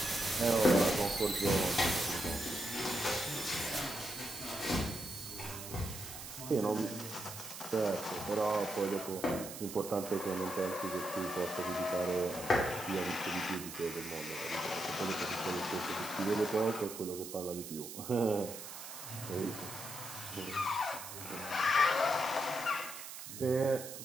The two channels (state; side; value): noise; right; hiss, 10 dB below the sound